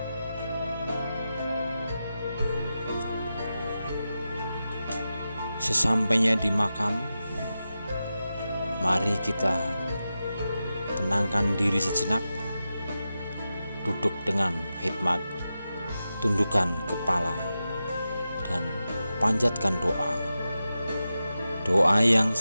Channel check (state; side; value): inverted; both; correlation -0.91